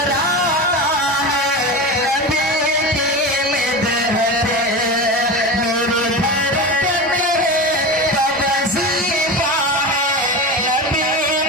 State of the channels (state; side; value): normal; both; correlation 0.25